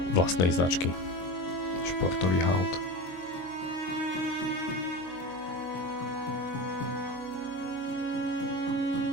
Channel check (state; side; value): late; right; 22 ms